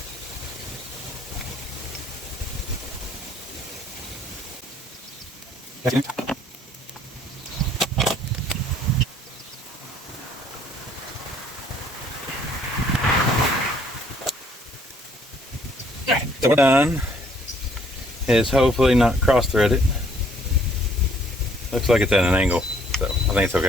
so we're done. Is hopefully not cross-threaded. Looks like it's at an angle, so I think it's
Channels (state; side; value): normal; both; correlation 0.62